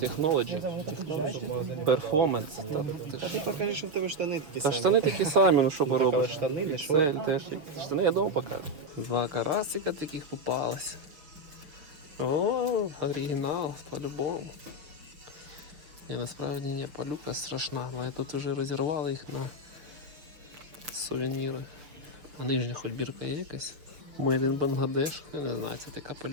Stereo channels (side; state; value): left; late; 6.6 ms